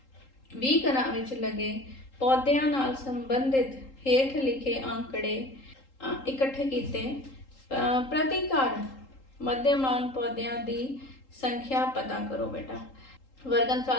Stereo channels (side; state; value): right; late; 3.8 ms